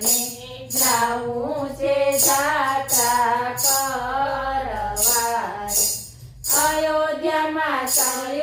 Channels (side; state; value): both; identical; correlation 1.00